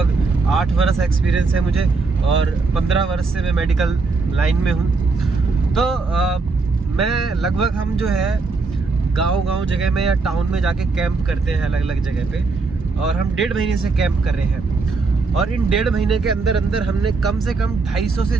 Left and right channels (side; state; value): left; quieter; 4.1 dB